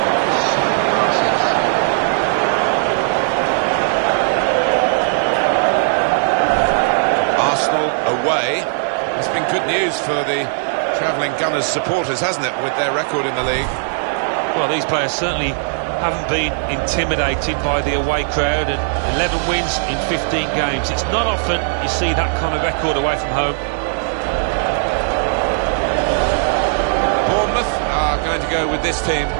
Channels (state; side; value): silent; left; 67 dB below the other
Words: Away. It's been good news for the travelling Gunners supporters, hasn't it, with their record in the league? Well, these players certainly haven't been intimidated by the away crowd, and 11 wins in 15 games. It's not often you see that kind of record away from home. Bournemouth are going to go with this team